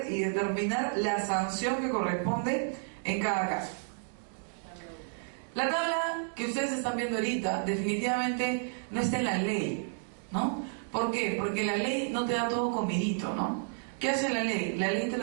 y determinar la sanción que corresponde en cada caso. La tabla que ustedes están viendo ahorita definitivamente no está en la ley, ¿no? ¿Por qué? Porque la ley no te da todo comidito, ¿no? ¿Qué hace la ley? La ley te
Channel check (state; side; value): silent; left; digital silence